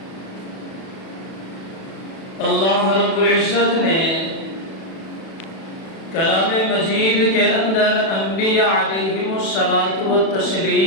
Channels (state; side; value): late; right; 36 ms